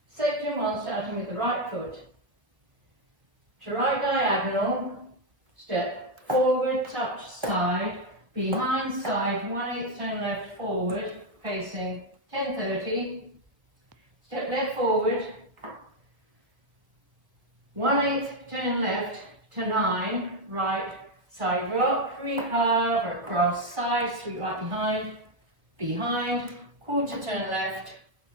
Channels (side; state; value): left; late; 1.3 ms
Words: Section 1, starting with the right foot. To right diagonal, step forward, touch side, behind side, 1/8 turn left forward, facing 10:30. Step left forward, 1/8 turn left to 9, right side rock, recurve across side, sweep right behind, quarter turn left,